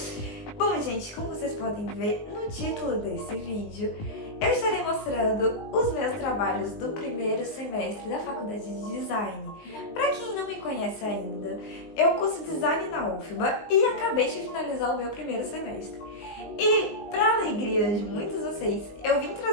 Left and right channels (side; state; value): right; late; 19 ms